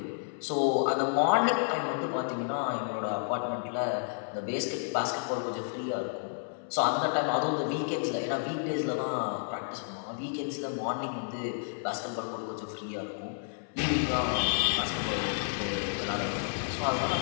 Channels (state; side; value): silent; right; 57 dB below the other